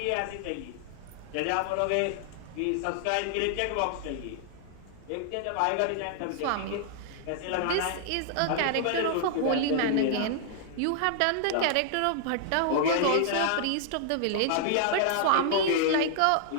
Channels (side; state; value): both; different; correlation -0.01